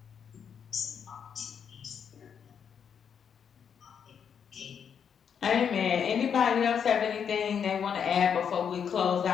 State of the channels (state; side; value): quieter; right; 7.5 dB